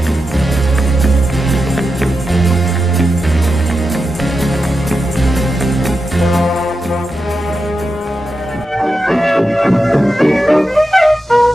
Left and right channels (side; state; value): both; normal; correlation 0.89